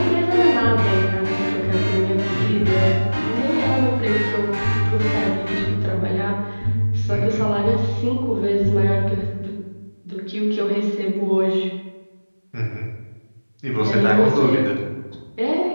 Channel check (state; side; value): inverted; both; correlation -1.00